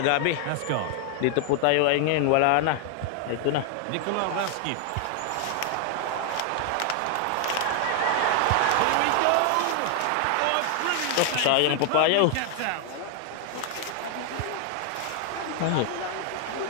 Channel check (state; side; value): different; both; correlation 0.00